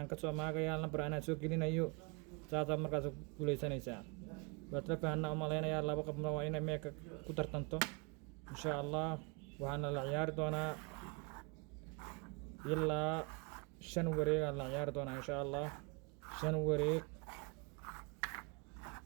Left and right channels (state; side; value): quieter; left; 31.4 dB